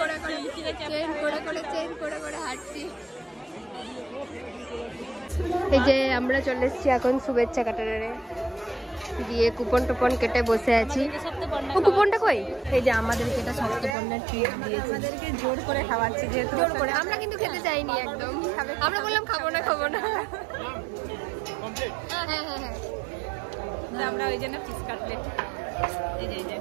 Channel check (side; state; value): left; drops out; at 14.0 s